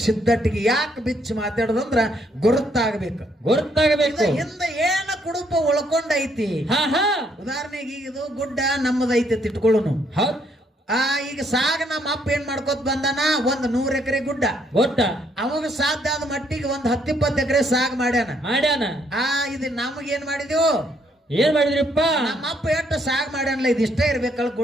ಸಿದ್ಧಟ್ಟಿಗೆ ಯಾಕೆ ಬಿಚ್ಚಿ ಮಾತಾಡೋದಂದ್ರ ಗುರುತಾಗಬೇಕು ಗೊತ್ತಾಗಬೇಕು ಹಿಂದೆ ಏನ ಕುಡುಪ ಉಳ್ಕೊಂಡೈತಿ ಹಾ ಹಾ ಉದಾಹರಣೆಗೆ ಈಗ ಇದು ಗುಡ್ಡ ನಮ್ಮದೈತಿ ಇಟ್ಕೊಳ್ಳೋನು ಹೌದ್ ಈಗ ಸಾಗ ನಮ್ಮ ಅಪ್ಪ ಏನ್ ಮಾಡ್ಕೋತ ಬಂದಾನ ಒಂದ್ 100 ಎಕರೆ ಗುಡ್ಡ ಗೊತ್ತ ಅವಾಗ ಸಾಧ್ಯ ಆದ ಮಟ್ಟಿಗೆ ಒಂದ್ 10-20 ಎಕರೆ ಸಾಗ್ ಮಾಡ್ಯಾನ ಇದು ನಮಗ್ ಏನ್ ಮಾಡಿದ್ವು ಏನ್ ಮಾಡಿದ್ರಿಪ್ಪ ನಮ್ಮ ಅಪ್ಪ ಎಷ್ಟು ಸಾಗ್ ಮಾಡ್ಯಾನಲ್ಲ ಇದು ಇಷ್ಟೇ ಇರ್ಬೇಕಲ್ಲ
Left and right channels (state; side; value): normal; both; correlation 0.70